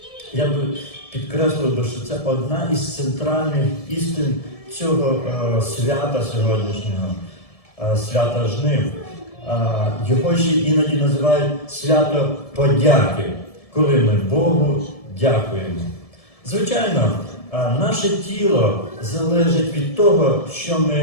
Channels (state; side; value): late; right; 1.7 ms